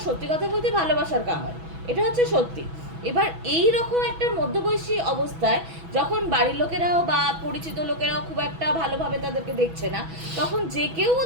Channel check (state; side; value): late; left; 6.1 ms